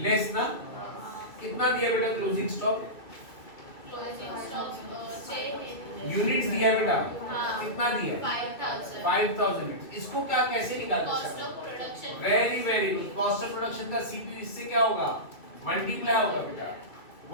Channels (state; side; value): late; right; 2.5 ms